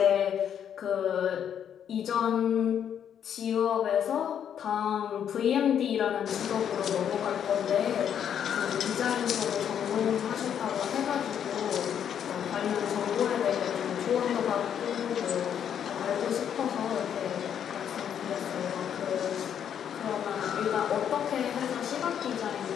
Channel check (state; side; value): quieter; right; 8.9 dB